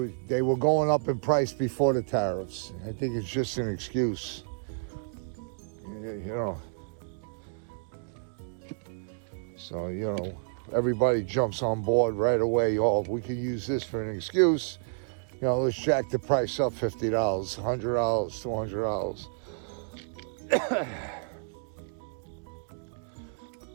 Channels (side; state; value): left; silent; digital silence